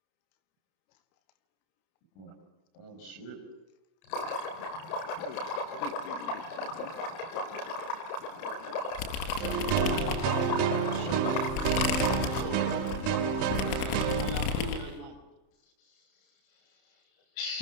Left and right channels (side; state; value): right; late; 31 ms